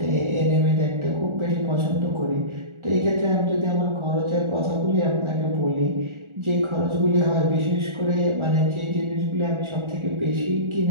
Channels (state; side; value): late; left; 1.4 ms